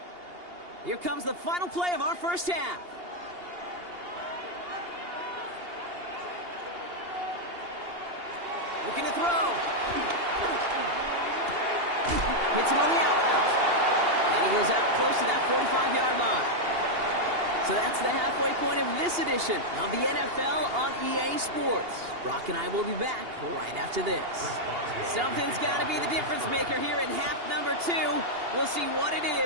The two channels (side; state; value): left; late; 2.8 ms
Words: Here comes the final play of our 1st half. Looking to throw. Hits him on the out route. And he goes out close to that 45-yard line. So that's the halfway point of this edition of the NFL on EA Sports. Brock and I will be back right after this. Something's got to be the difference maker here in half number 2. We'll see what it